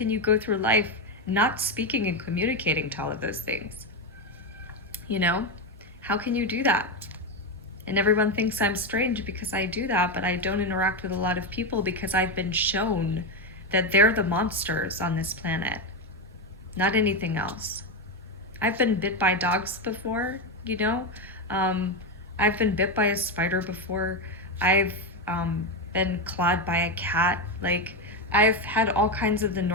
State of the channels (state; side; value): normal; both; correlation 0.10